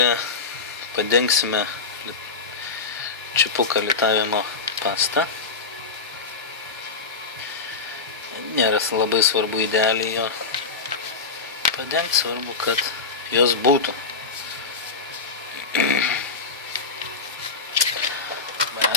padengsime čipuką litavimo pastą. Nėra labai svarbu idealiai jo padengti, svarbu, kad jos būtų.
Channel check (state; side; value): quieter; right; 4.7 dB